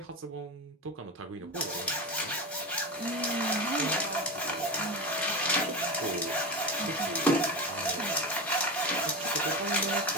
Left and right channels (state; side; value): normal; both; correlation 0.22